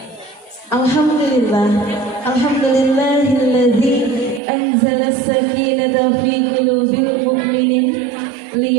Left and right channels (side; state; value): left; drops out; at 4.4 s